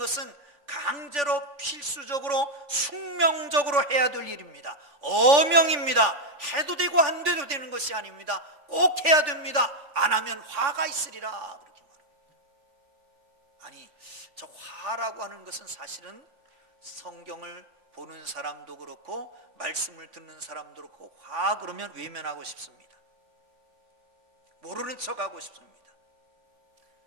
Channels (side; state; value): left; late; 3.5 ms